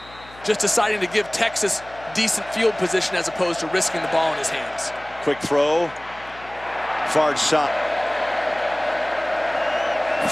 Just deciding to give Texas decent field position as opposed to risking the ball in his hands. Quick throw. Far side.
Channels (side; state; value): left; noise; hum, 22 dB below the sound